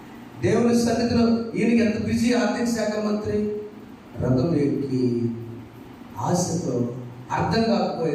దేవుని సన్నిధిలో ఈయనకి ఎంత బిజీ ఆర్థిక శాఖ మంత్రి. రథం ఎక్కి ఆశతో అర్థం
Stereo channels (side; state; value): both; identical; correlation 1.00